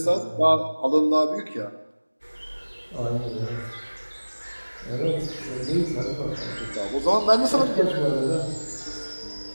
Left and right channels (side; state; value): both; inverted; correlation -1.00